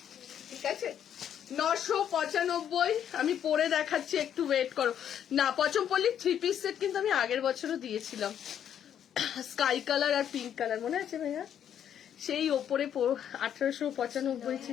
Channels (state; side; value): quieter; right; 9.4 dB